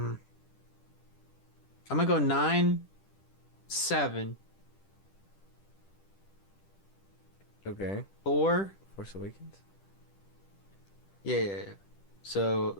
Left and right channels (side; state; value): right; late; 10 ms